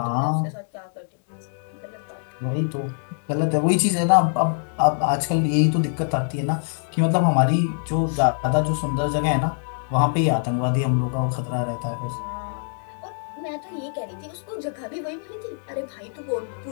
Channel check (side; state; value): right; silent; digital silence